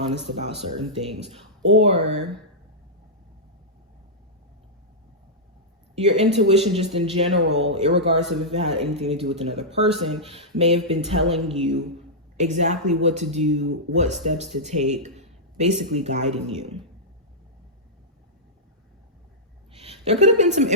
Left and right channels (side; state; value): both; normal; correlation -0.10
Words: about certain things, or your intuition just in general, irregardless of if it had anything to do with another person, may have been telling you exactly what to do, what steps to take, basically guiding you. There could have been some